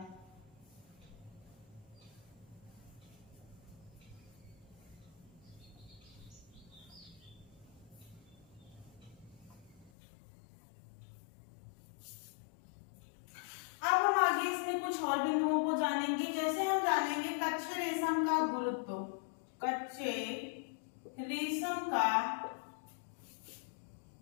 अब हम आगे इसमें कुछ और बिंदुओं को जानेंगे, जैसे हम जानेंगे कच्चे रेशम का गुरुत्व। कच्चे रेशम का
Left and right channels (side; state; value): right; drops out; at 9.9 s